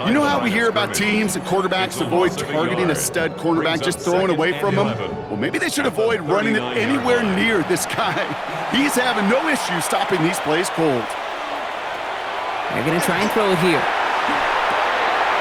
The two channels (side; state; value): both; identical; correlation 1.00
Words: You know how we hear about teams and quarterbacks avoid targeting a stud cornerback, just throwing away from him? Well, maybe they should avoid running it anywhere near this guy. He's having no issue stopping these plays cold. They're going to try and throw it here.